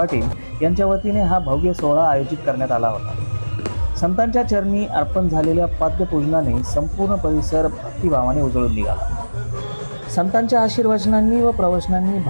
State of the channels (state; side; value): inverted; both; correlation -1.00